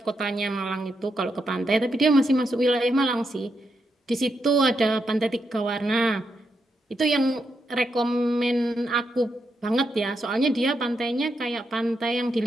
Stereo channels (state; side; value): normal; both; correlation 0.83